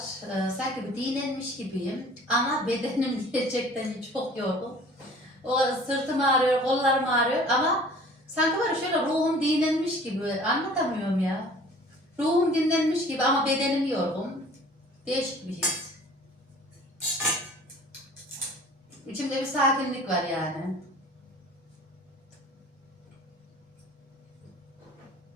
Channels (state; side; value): normal; both; correlation 0.48